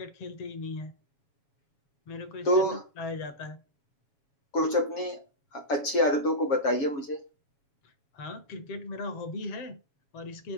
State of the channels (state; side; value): late; right; 7.2 ms